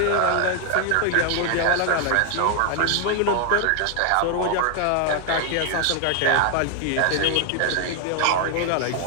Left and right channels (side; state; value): both; different; correlation 0.00